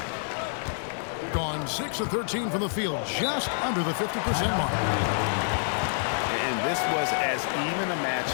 Gone 6 of 13 from the field, just under the 50% mark. And this was as even a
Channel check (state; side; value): silent; right; digital silence